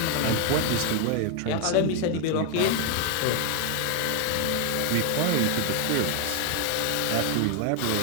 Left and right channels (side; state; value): both; different; correlation 0.01